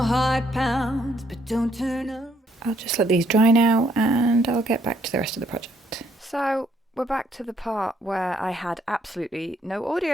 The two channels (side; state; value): both; normal; correlation 0.69